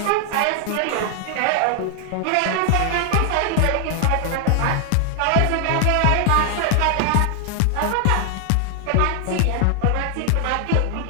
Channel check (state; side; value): different; both; correlation 0.00